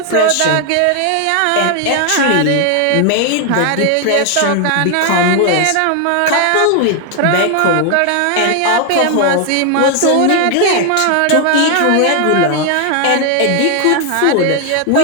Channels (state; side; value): different; both; correlation 0.00